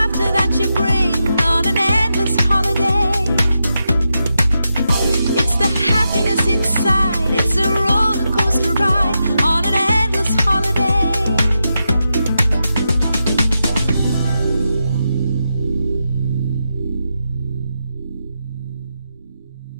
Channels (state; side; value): inverted; both; correlation -0.87